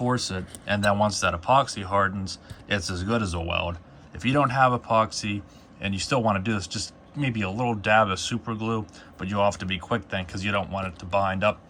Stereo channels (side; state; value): both; identical; correlation 1.00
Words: it, and then once that epoxy hardens, it's as good as a weld. If you don't have epoxy and you still want to do this, just maybe a little dab of super glue, but you'll have to be quick then because you don't want it to bind up